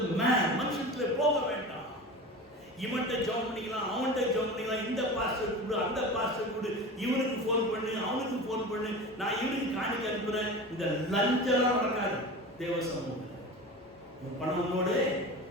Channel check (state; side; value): normal; both; correlation 0.32